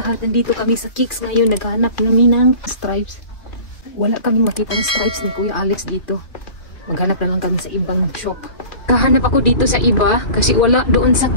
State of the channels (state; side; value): late; right; 2.6 ms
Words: Nandito kami sa Kicks ngayon, naghahanap namin ng stripes. Wala kaming makita ng stripes ni Kuya Alex dito. Maghanap na lang kami sa ibang shop. Kahanap ako dito sa iba kasi wala doon sa